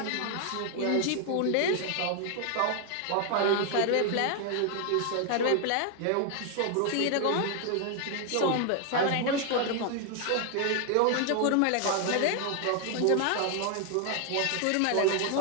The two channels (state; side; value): different; both; correlation 0.01